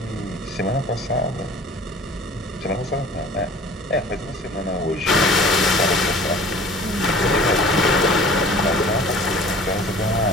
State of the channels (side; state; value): both; normal; correlation 0.46